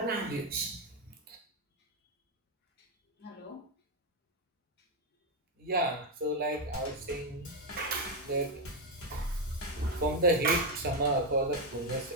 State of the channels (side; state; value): both; normal; correlation 0.04